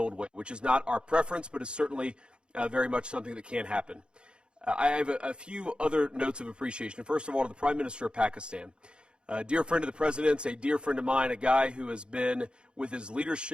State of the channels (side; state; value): left; late; 0.053 ms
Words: way, which is not our preference, but is certainly very much something that can happen. I have a few other notes of appreciation. First of all, to the Prime Minister of Pakistan. A dear friend of the President's, a dear friend of mine, a guy who has been, with his